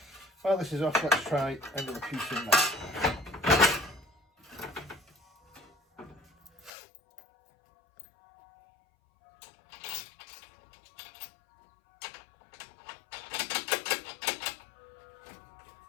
While this is off, let's try another piece in there.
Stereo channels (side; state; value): right; drops out; at 6.7 s